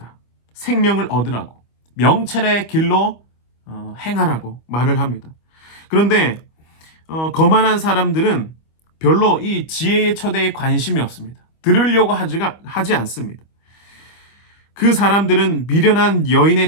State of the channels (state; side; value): late; right; 25 ms